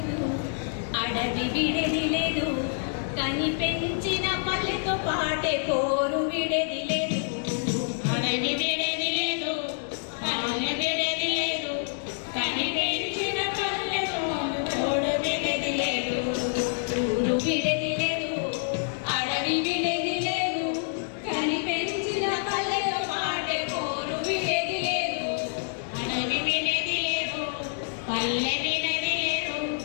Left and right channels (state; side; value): silent; right; digital silence